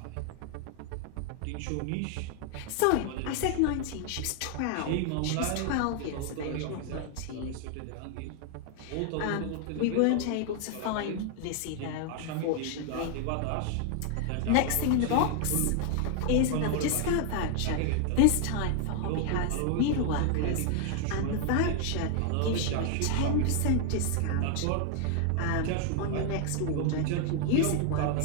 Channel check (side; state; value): both; different; correlation 0.00